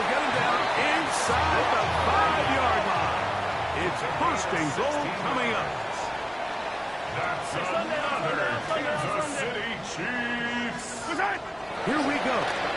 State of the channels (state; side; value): identical; both; correlation 1.00